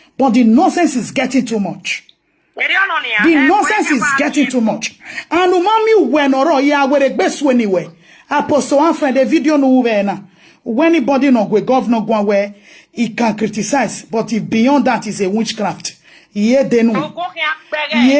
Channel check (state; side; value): identical; both; correlation 1.00